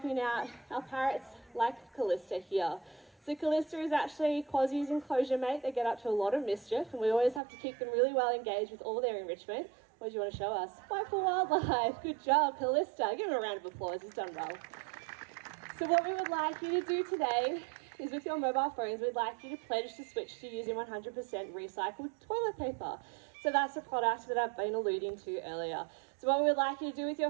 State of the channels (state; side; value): drops out; left; at 7.4 s